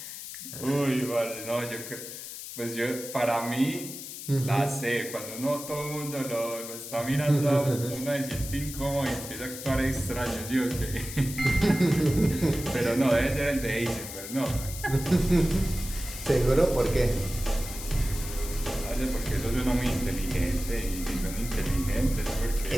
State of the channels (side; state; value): left; noise; hiss, 10 dB below the sound